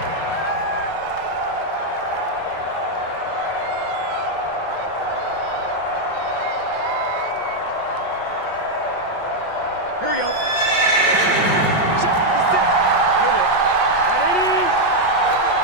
Here we go.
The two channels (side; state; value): right; late; 5.5 ms